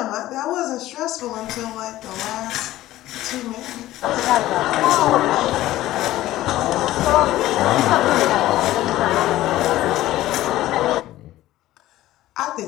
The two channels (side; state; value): right; quieter; 15.3 dB